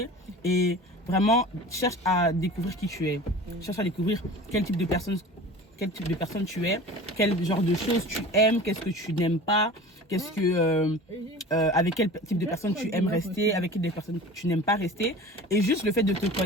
et vraiment cherche à découvrir qui tu es. Cherche à découvrir quel type de personne tu es, quel genre de choses tu aimes, qu'est-ce que tu n'aimes pas, qu'est-ce que avec quel type de personne tu aimes rester, avec quelle personne tu n'aimes pas rester. Et juste le fait de te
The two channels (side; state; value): both; normal; correlation 0.38